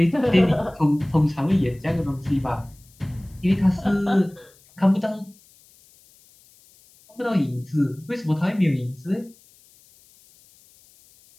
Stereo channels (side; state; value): left; noise; hiss, 29 dB below the sound